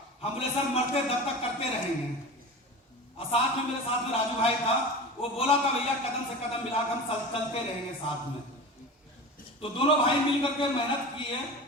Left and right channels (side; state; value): both; normal; correlation 0.32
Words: हम बोले सर मरते दब तक करते रहेंगे। और साथ में मेरे साथ में राजू भाई था, वो बोला था भैया कदम से कदम मिलाकर हम चलते रहेंगे साथ में। तो दोनों भाई मिलकर के मेहनत किए